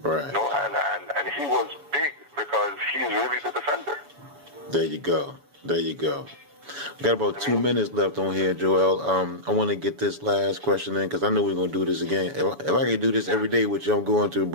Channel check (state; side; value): late; left; 7.0 ms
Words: You know, and he was big because he's really the defender. There you go. We got about 2 minutes left on here, Joel. I want to get this last question in because I know we're going to do this again. If I can do this every day, which I'm going to,